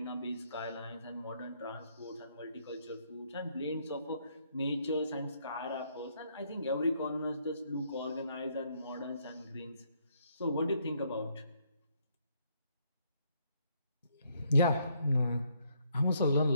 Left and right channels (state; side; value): inverted; both; correlation -0.71